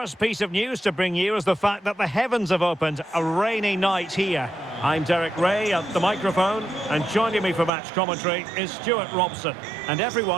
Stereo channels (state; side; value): drops out; left; at 7.7 s